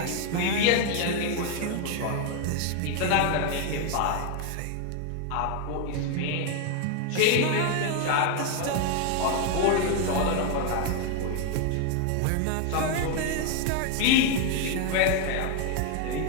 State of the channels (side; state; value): both; different; correlation 0.01